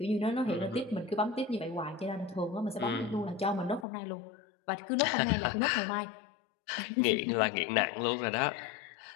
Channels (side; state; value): right; drops out; at 3.9 s